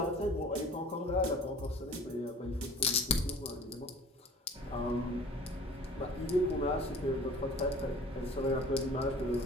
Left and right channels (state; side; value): normal; both; correlation 0.45